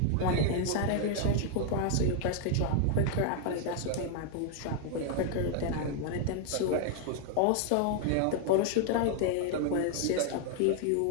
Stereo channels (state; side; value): different; both; correlation 0.00